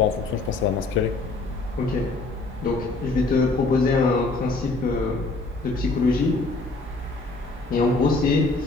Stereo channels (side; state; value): right; quieter; 3.4 dB